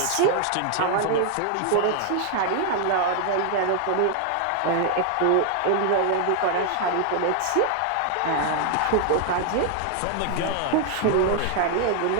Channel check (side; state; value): both; different; correlation 0.00